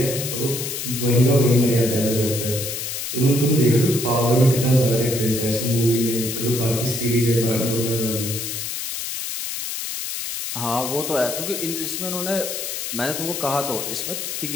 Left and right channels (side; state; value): left; noise; hiss, 5 dB below the sound